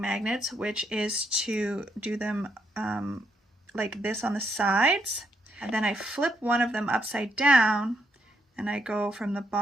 which is to do them like this on the sides, and then I flip one of them upside down and I go from the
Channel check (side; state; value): both; normal; correlation 0.76